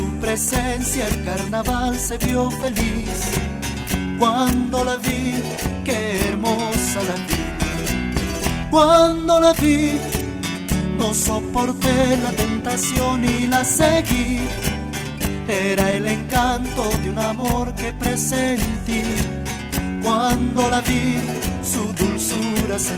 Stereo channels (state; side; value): identical; both; correlation 1.00